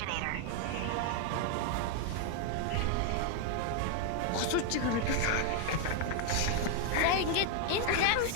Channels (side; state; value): both; different; correlation 0.00